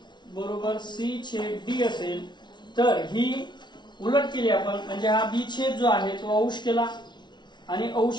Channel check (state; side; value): late; right; 0.21 ms